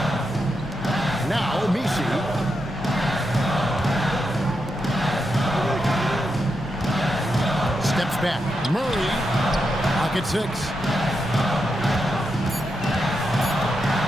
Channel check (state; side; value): normal; both; correlation 0.85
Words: Now, Misi. Steps back. Murray. Pocket 6.